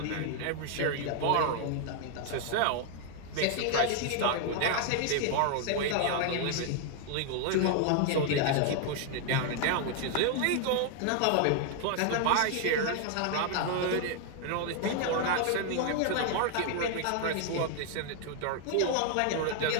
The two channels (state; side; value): different; both; correlation 0.00